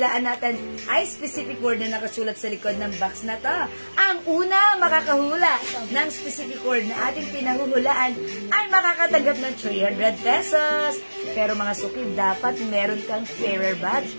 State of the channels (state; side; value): inverted; both; correlation -1.00